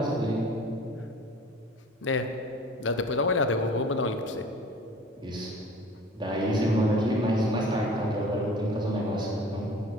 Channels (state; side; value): normal; both; correlation 0.45